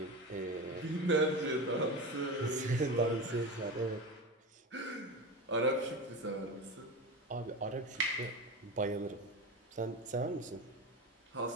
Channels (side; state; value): both; normal; correlation 0.24